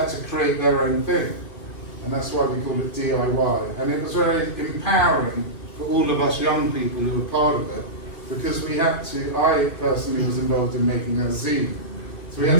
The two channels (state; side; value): late; right; 2.3 ms